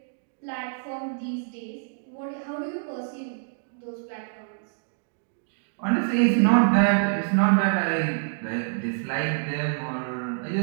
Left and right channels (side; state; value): left; silent; digital silence